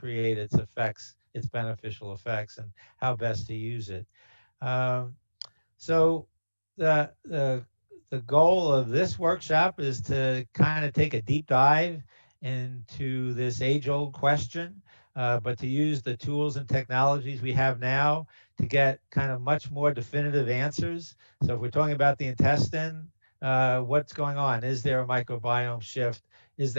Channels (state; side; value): inverted; both; correlation -1.00